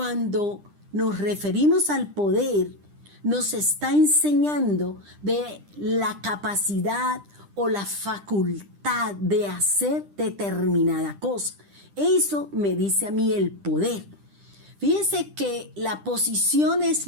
nos referimos al poder, nos está enseñando de la capacidad o la facultad de hacer determinada cosa. Eso me dice a mí el poder. Fíjese que la posición es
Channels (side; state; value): left; late; 10 ms